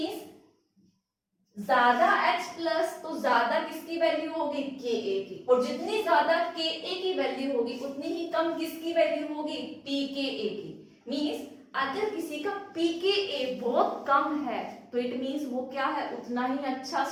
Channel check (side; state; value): both; identical; correlation 1.00